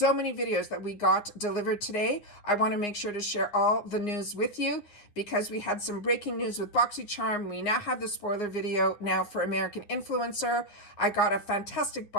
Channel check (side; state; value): right; late; 9.7 ms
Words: many videos that we got delivered today. I want to make sure to share all the news with you because we had some breaking news with BoxyCharm. We now have the spoiler video now for American Influencer. I got a fantastic